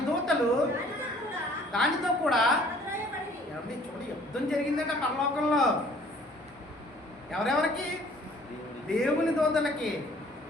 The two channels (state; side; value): normal; both; correlation 0.55